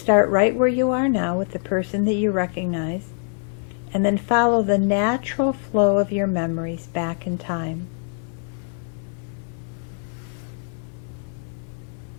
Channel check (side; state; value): right; silent; 56 dB below the other